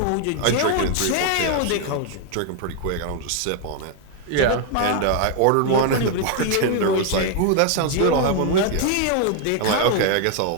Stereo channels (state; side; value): different; both; correlation 0.00